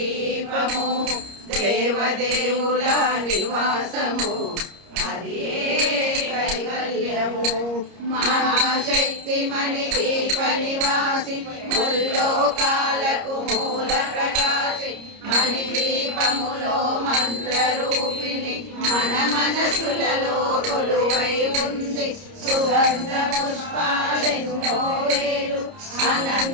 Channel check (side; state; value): left; late; 30 ms